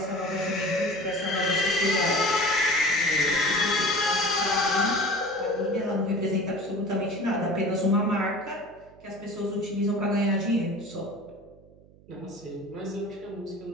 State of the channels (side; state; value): right; noise; hum, 25 dB below the sound